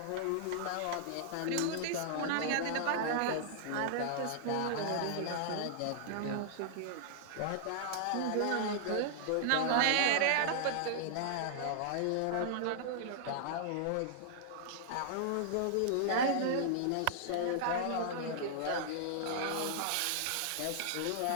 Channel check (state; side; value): different; both; correlation -0.01